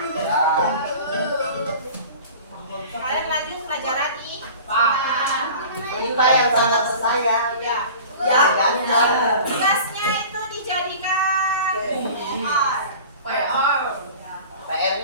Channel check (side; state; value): both; inverted; correlation -0.41